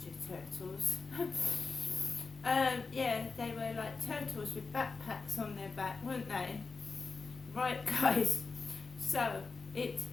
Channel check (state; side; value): quieter; right; 4.4 dB